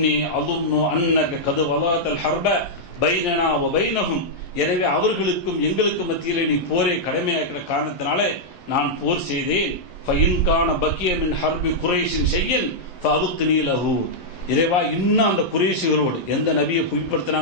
அظن அன்னக கத் வலாத்தல் ஹர்ப பைனனா வ பைனஹும், எனவே அவர்களுக்கும் எங்களுக்கும் மத்தியிலே நீ போரை கடமையாக்கிற காரணத்தினாலே நான் போர் செய்தேன். ஃபஇன் கான பக்கிய மின் ஹர்பி குரைஷின் ஷையன் ஃபஅப்கினி லஹு, இறைவா, இன்னும் அந்த குறைஷிகளோடு எந்த நபியை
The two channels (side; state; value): right; late; 11 ms